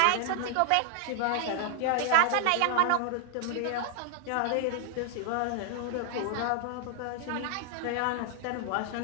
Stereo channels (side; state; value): both; different; correlation 0.00